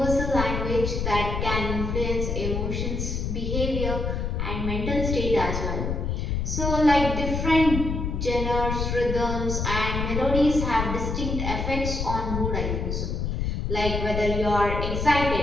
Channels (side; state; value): left; noise; rumble, 2 dB below the sound